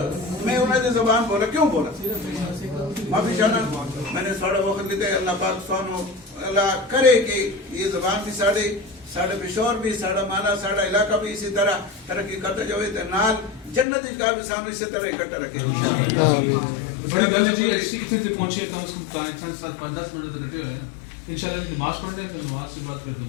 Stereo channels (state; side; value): drops out; right; at 13.9 s